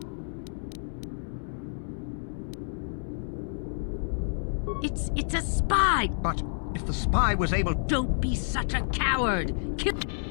It's a spy! But if the spy was able... Don't be such a coward! Kill...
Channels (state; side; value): silent; right; digital silence